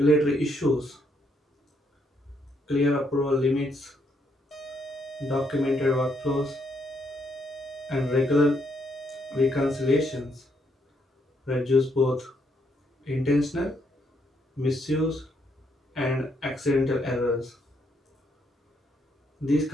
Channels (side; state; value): both; normal; correlation 0.74